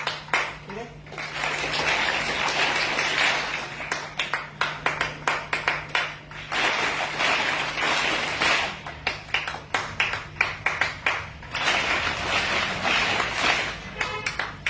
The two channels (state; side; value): identical; both; correlation 1.00